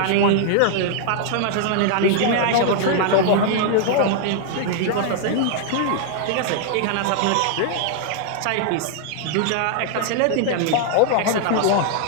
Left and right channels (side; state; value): both; different; correlation -0.01